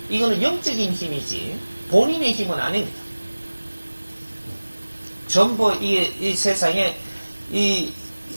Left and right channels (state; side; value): inverted; both; correlation -1.00